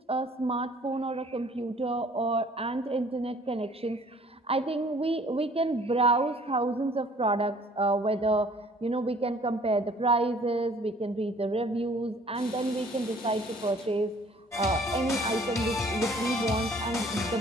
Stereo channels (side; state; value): both; normal; correlation 0.55